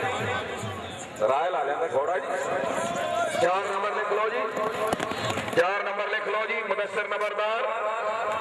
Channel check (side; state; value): both; identical; correlation 1.00